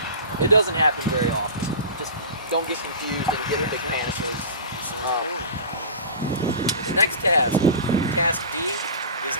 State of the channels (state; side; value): inverted; both; correlation -0.33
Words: It doesn't happen very often. Just don't get confused and get a big panic. The next task, task D, is